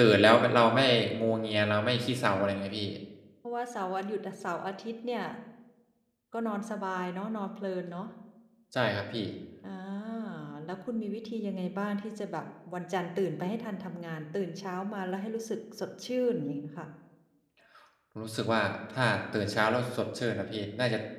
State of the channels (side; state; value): both; identical; correlation 1.00